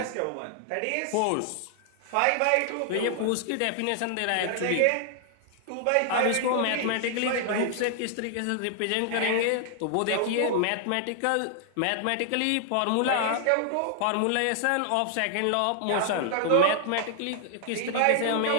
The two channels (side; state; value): both; different; correlation 0.00